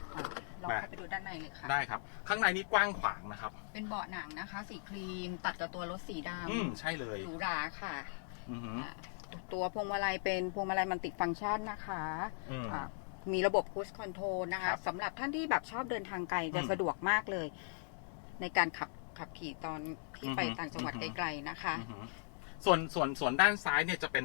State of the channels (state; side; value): silent; right; digital silence